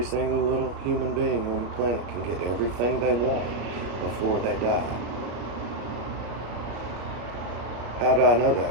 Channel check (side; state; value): left; late; 34 ms